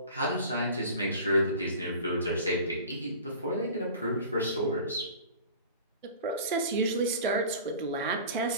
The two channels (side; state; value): both; inverted; correlation -0.40